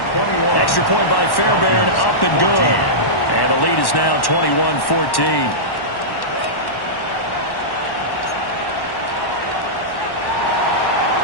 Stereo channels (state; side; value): late; right; 1.1 ms